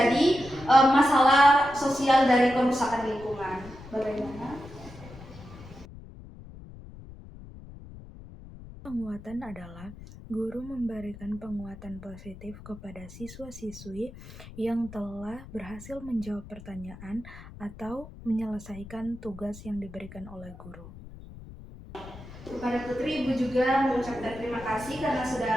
masalah sosial dari kerusakan lingkungan. Bagaimana? Penguatan adalah guru memberikan penguatan positif kepada siswa-siswi yang telah berhasil menjawab pertanyaan atau menyelesaikan tugas yang diberikan oleh guru. Kepada Putri, Ibu juga mengucapkan terima kasih karena sudah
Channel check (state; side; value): noise; left; rumble, 16 dB below the sound